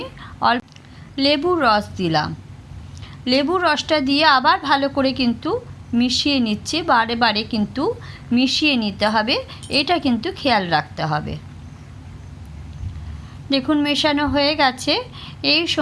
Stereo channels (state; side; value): identical; both; correlation 1.00